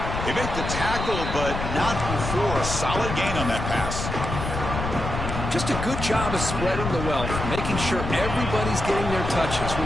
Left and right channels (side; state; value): left; noise; rumble, 4 dB below the sound